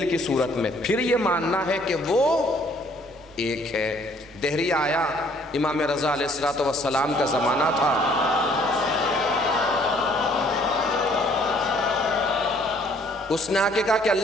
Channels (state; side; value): normal; both; correlation 0.61